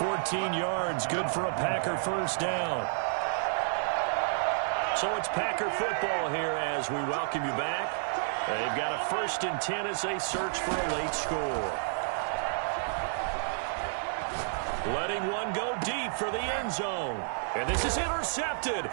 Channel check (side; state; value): left; silent; digital silence